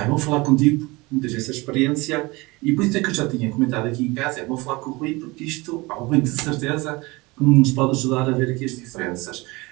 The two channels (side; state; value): left; quieter; 23.6 dB